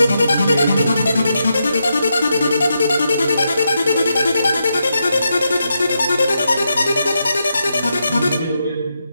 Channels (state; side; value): inverted; both; correlation -0.84